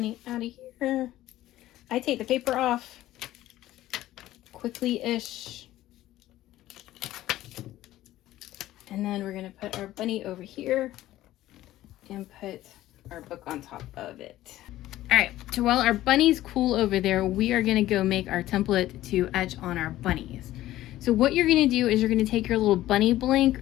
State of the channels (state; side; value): quieter; right; 14.9 dB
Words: out of here. I take the paper off quickly-ish. And then we're gonna put our bunny over here and put our book on top of it. All right, so while our bunnies cool over there, we are gonna go make our template to etch on our bunnies. So what you're gonna do is you're gonna take your little bunny blank,